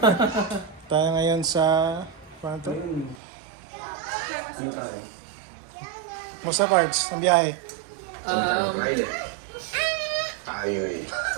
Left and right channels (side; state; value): left; drops out; at 3.2 s